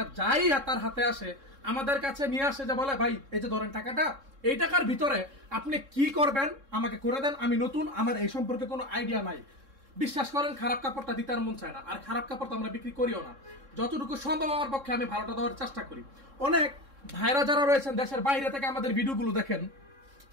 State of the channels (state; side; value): late; left; 3.7 ms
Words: যাই তার হাতে আসে আমাদের কাছে নিয়ে আসে, যে বলে ভাই এই যে ধরেন টাকাটা, এই টাকার ভিতরে আপনি কি করবেন আমাকে করে দেন, আমি নতুন, আমার এই সম্পর্কে কোনো আইডিয়া নাই। বিশ্বাস করেন, খারাপ কাপড়টা দিতে আর মন চায় না, আর খারাপ কাপড় তো আমরা বিক্রি করিও না। যতটুকু সম্ভব আমার পক্ষে আমি ভালোটা দেওয়ার চেষ্টা করি। অনেক ভাইরা যারা রয়েছেন দেশের বাইরে থেকে আমাদের ভিডিওগুলো দেখেন,